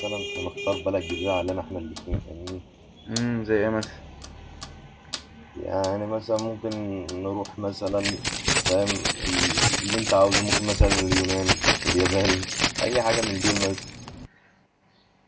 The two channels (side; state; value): both; identical; correlation 1.00